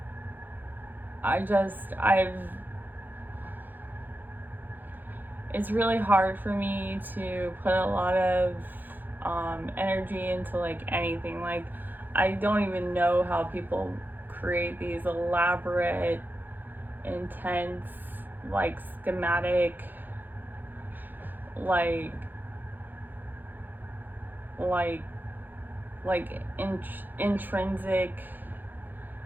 It's really hard for me to put a lot of energy into like anything. Like, I don't even know how people create these elaborate, intense, like schematic, like intrinsic,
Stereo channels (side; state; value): left; late; 0.088 ms